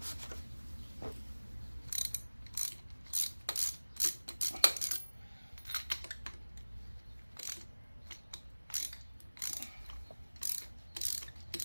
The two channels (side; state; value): both; inverted; correlation -1.00